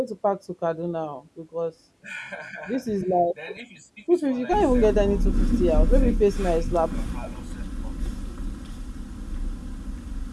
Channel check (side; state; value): both; identical; correlation 1.00